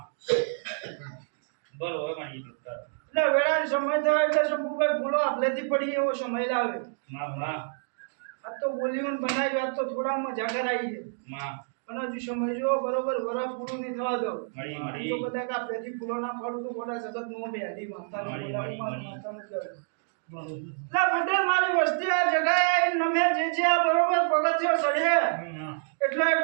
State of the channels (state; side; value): silent; left; digital silence